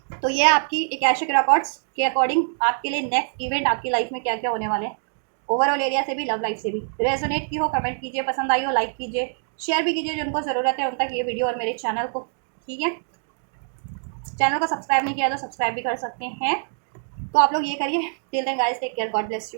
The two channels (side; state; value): left; silent; digital silence